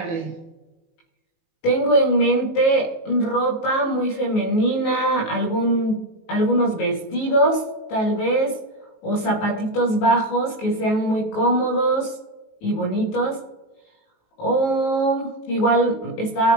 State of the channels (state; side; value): late; right; 19 ms